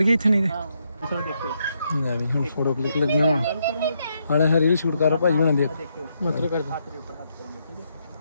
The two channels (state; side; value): inverted; both; correlation -0.78